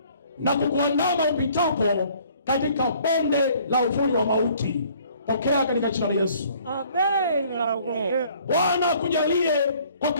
na kukuandama upitapo katika bonde la uvuli wa mauti. Pokea katika jina la Yesu. Amen. Bwana akujalie kwa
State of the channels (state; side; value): inverted; both; correlation -0.58